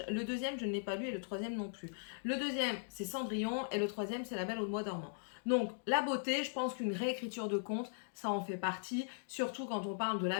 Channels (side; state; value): right; silent; digital silence